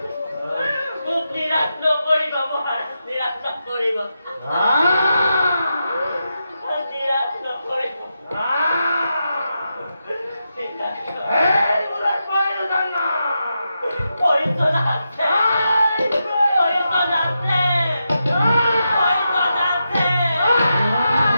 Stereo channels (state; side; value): inverted; both; correlation -0.87